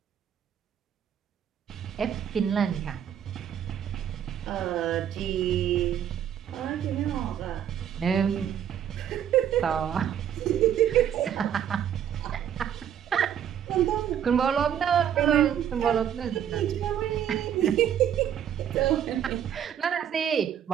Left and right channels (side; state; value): left; quieter; 9.6 dB